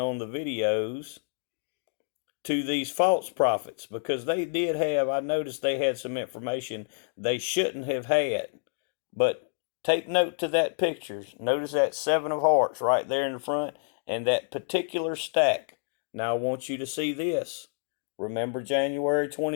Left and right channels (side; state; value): right; silent; digital silence